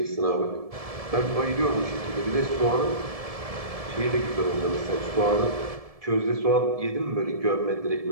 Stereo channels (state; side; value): late; left; 1.7 ms